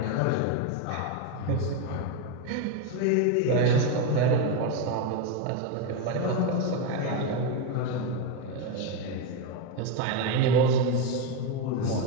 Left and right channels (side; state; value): both; different; correlation 0.03